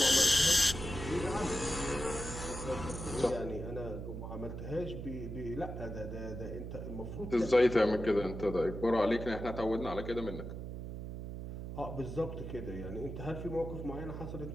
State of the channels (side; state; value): right; noise; hum, 7 dB below the sound